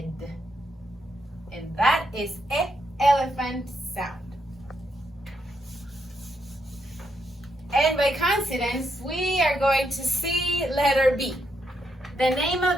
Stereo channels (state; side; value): normal; both; correlation 0.79